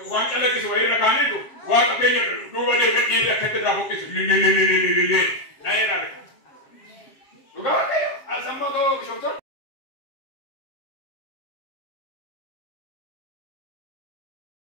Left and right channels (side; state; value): right; late; 7.5 ms